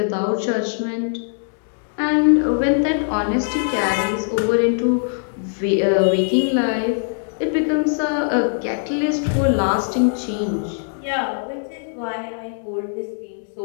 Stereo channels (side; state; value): right; silent; digital silence